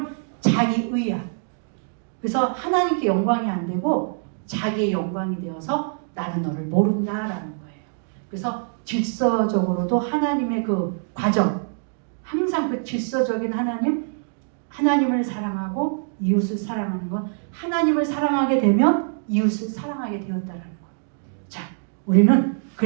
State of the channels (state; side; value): silent; left; digital silence